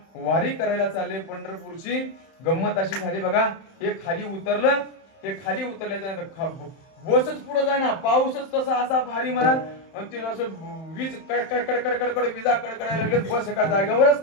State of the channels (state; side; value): late; right; 31 ms